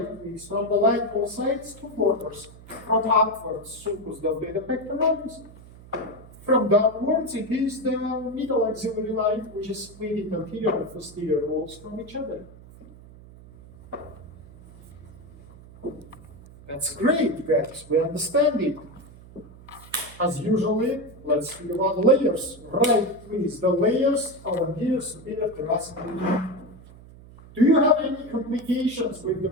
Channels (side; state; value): right; noise; hum, 20 dB below the sound